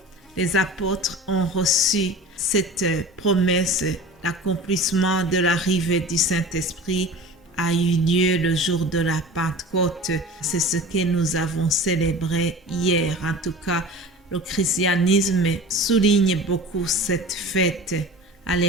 les apôtres ont reçu cette promesse. L'accomplissement de l'arrivée du Saint-Esprit a eu lieu le jour de la Pentecôte. C'est ce que nous avons célébré hier. En tout cas, le christianisme souligne beaucoup cette fête.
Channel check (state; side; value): normal; both; correlation 0.37